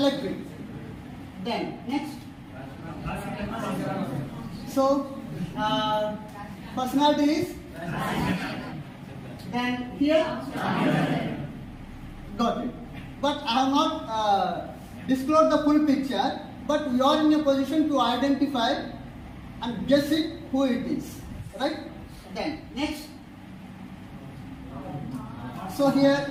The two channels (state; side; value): identical; both; correlation 1.00